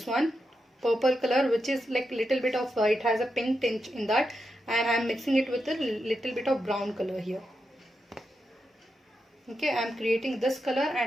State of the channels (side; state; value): both; normal; correlation 0.86